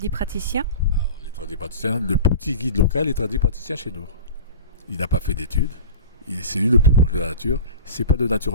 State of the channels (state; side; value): inverted; both; correlation -0.36